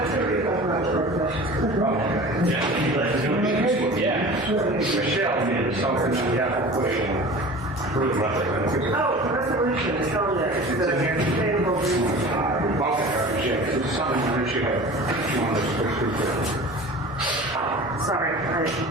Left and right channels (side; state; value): both; normal; correlation 0.39